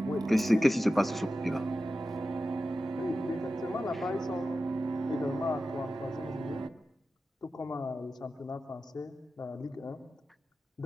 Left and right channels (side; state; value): both; normal; correlation 0.93